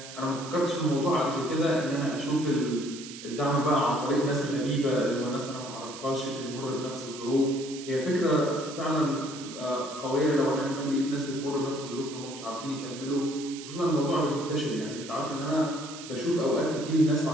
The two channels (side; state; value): right; noise; hiss, 13 dB below the sound